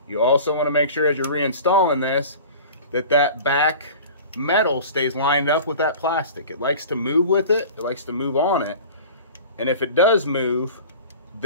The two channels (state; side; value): inverted; both; correlation -0.40